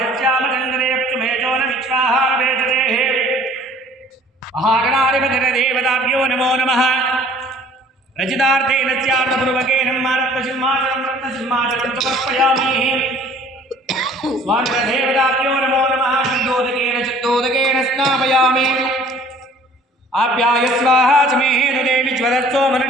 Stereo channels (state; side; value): normal; both; correlation 0.53